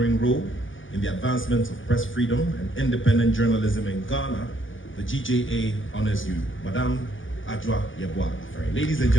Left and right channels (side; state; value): right; late; 0.57 ms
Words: role in the advancement of press freedom and independent journalism in Ghana, the GJA honors you. Madam Ajwa Yeboah Aferi. Ladies and